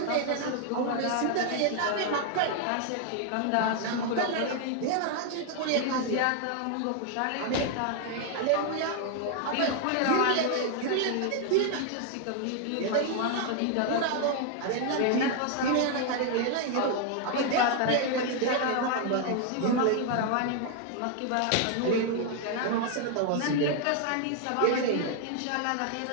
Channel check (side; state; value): both; different; correlation 0.00